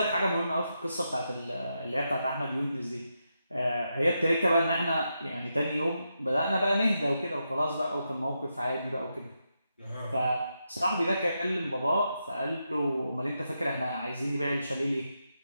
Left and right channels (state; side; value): inverted; both; correlation -0.85